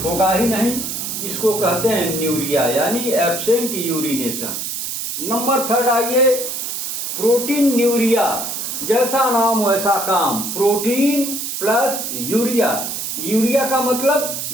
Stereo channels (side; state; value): right; noise; hiss, 4 dB below the sound